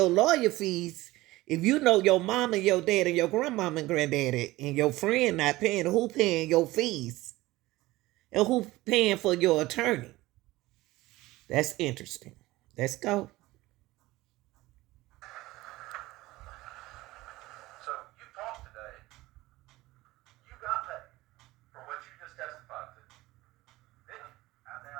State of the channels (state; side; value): quieter; left; 18.6 dB